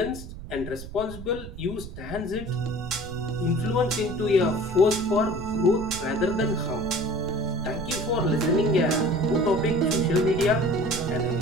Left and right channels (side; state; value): right; noise; rumble, 12 dB below the sound